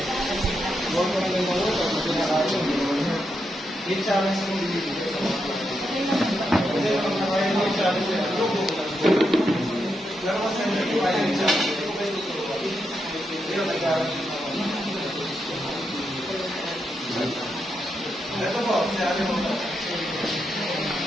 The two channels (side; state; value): both; normal; correlation 0.83